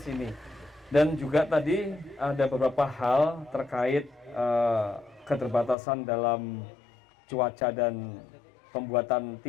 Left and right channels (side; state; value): right; drops out; at 5.8 s